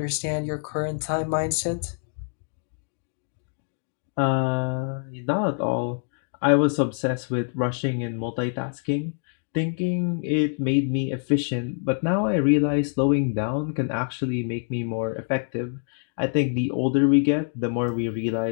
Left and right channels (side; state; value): right; silent; 58 dB below the other